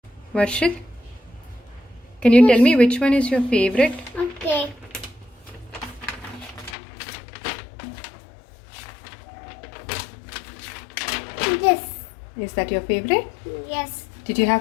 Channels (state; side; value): drops out; right; at 6.8 s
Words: Varshit, can you tell me which one is your favorite? Okay. This. Is that your favorite? Yes. Did you